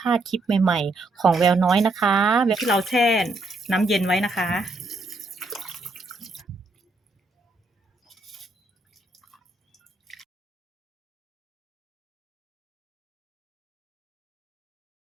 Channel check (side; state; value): left; quieter; 3.0 dB